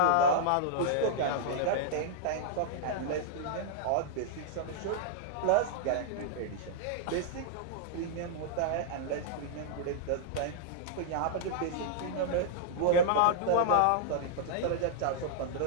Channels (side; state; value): both; different; correlation -0.01